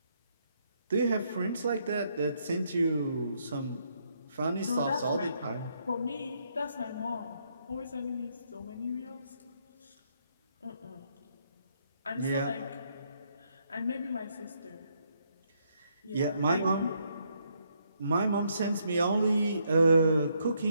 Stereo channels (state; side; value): inverted; both; correlation -0.74